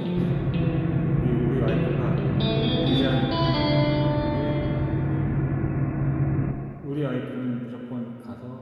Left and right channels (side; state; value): both; identical; correlation 1.00